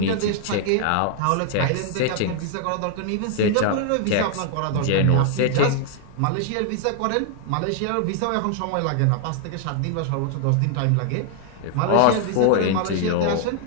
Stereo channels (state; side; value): different; both; correlation 0.00